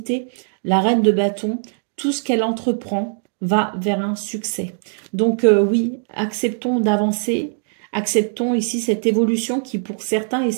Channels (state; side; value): silent; left; digital silence